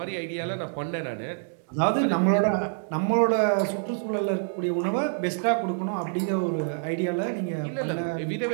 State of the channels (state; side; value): silent; left; digital silence